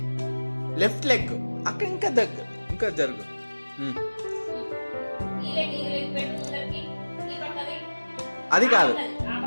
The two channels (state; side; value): inverted; both; correlation -1.00